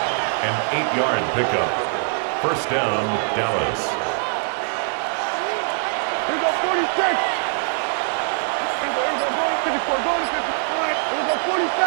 An 8-yard pickup. First down, Dallas. Here we go, 46. Here we go, going to 54, going to 54. Here we go,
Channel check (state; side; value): silent; left; 60 dB below the other